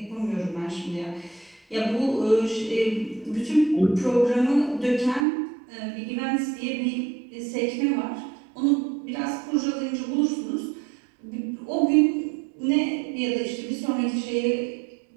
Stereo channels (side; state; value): left; drops out; at 5.2 s